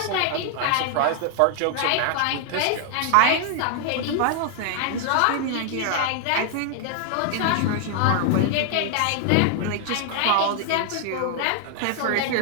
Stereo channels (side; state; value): both; different; correlation 0.00